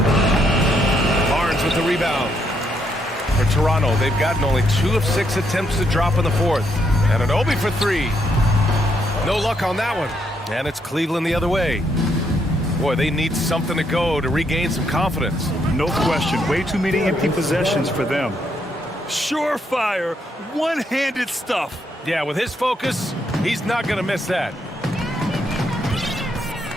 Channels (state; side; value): normal; both; correlation 0.75